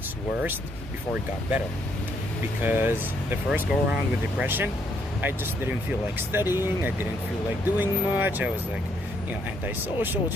worst before it got better. Because the first go around with depression, I just didn't feel like studying, I didn't feel like doing much, I was antisocial,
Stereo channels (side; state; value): both; normal; correlation 0.72